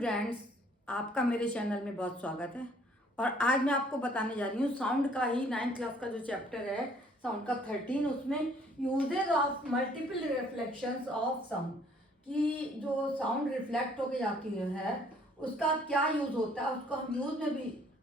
आपका मेरे channel में बहुत स्वागत है। और आज मैं आपको बताने जा रही हूँ साउंड का ही 9th क्लास का जो चैप्टर है साउंड का 13, उसमें uses of multiple reflections of sound, कि जो साउंड रिफ्लेक्ट होके जाती है उसका क्या यूज़ होता है, उसको हम यूज़ में भी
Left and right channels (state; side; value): normal; both; correlation 0.60